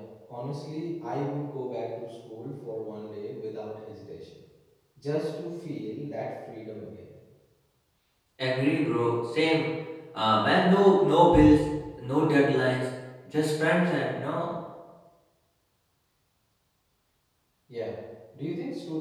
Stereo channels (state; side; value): identical; both; correlation 1.00